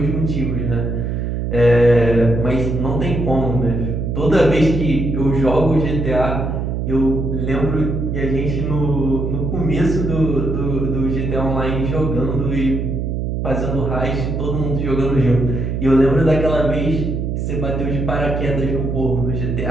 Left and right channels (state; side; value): noise; right; hum, 2 dB below the sound